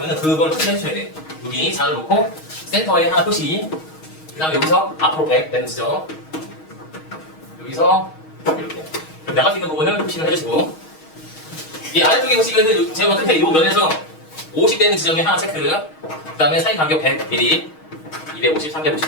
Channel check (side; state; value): right; late; 6.4 ms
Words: 그걸 표시해 주셔야 돼요. 여기 자를 놓고 센터에 하나 표시, 그 다음에 여기서 앞으로 100 되는 지점, 여기서 이렇게 나갈 수 있는 부분을 표시를 해주시고, 이 아래쪽에 보시면은 제가 끝에 이 면에서 50 되는 지점에 하나 체크, 그 다음에 사이 간격 100mm, 250,